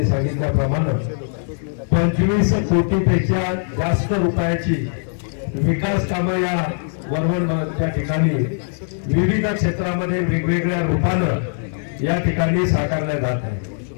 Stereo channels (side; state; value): right; silent; digital silence